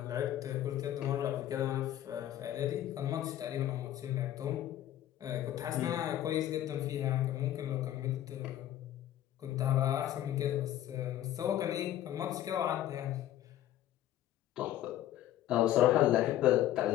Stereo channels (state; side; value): quieter; right; 12.6 dB